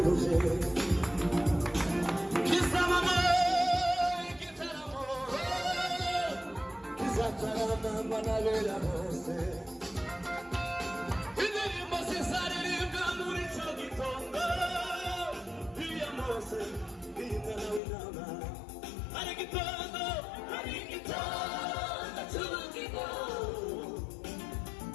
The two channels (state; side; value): drops out; right; at 17.8 s